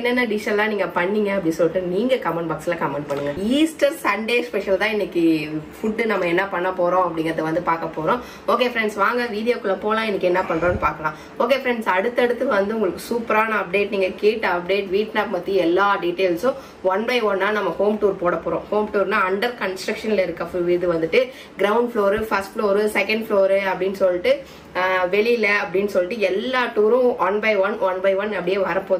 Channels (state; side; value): identical; both; correlation 1.00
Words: டிஷ் எல்லாம் நீங்க பண்ணீங்க அப்படி சொல்லிட்டு நீங்க கமெண்ட் பாக்ஸ்ல கமெண்ட் பண்ணுங்க. ஈஸ்டர் சண்டே ஸ்பெஷல் தான் இன்னைக்கு ஃபுட் நம்ம என்ன பண்ண போறோம் அப்படிங்கறத வந்து பார்க்க போறோம். ஓகே ஃப்ரெண்ட்ஸ், வாங்க வீடியோக்குள்ள போலாம். இன்னைக்கு என்ன பண்றோம்னு பார்க்கலாம். ஓகே ஃப்ரெண்ட்ஸ், அடுத்து வந்து உங்களுக்கு சூப்பரான அப்டேட், நீங்க கேட்ட அப்டேட், வீட்னாப் பத்தி எல்லா டீடைல்ஸும் ஒன் பை ஒன்னா நம்ம ஹோம் டூர் போட போறோம். ஹோம் டூர்னா அண்டர் கன்ஸ்ட்ரக்ஷன்ல இருக்க இது வந்துட்டு ground floor, first floor, second floor அப்படின்னு சொல்லிட்டு வெளியில அப்படின்னு சொல்லிட்டு எல்லா டூரும் ஒன் பை ஒன் அப்படியே